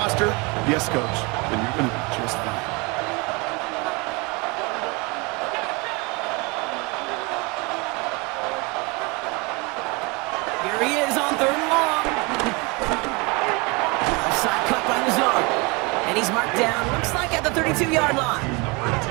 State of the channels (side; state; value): left; quieter; 27.9 dB